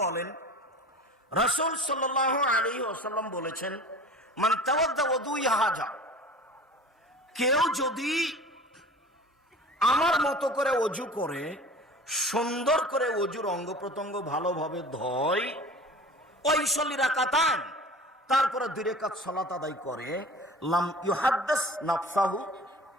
বলেন, রাসূল সাল্লাল্লাহু আলাইহি ওয়াসাল্লাম বলেছেন, মান তাওয়াদ্দা ওযুই হাজা, কেউ যদি আমার মতো করে অজু করে, সুন্দর করে অজুর অঙ্গ প্রত্যঙ্গ ভালোভাবে ধয়, ওয়াইসাল্লি রাকাতান, তারপরে 2 রাকাত সালাত আদায় করে, লাম ইউহাদ্দিস নাফসাহু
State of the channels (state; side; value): normal; both; correlation 0.40